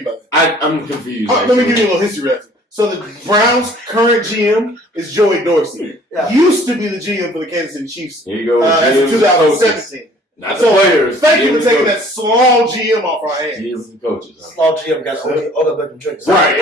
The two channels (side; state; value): both; normal; correlation 0.54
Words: by that. I'm confused. Let me give you a little history lesson. So the Browns' current GM is Joey Dorsey. Yeah. Used to be the GM for the Kansas City Chiefs. Here you go. That's in 2017. Not the So players. thank you GMs for taking and that small GM off our hands. GMs and coaches. Huh? Small GM got all the better drinks. Right.